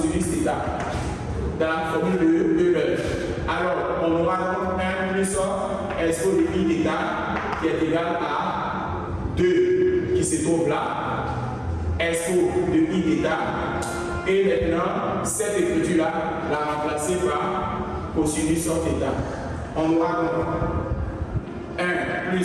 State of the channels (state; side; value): identical; both; correlation 1.00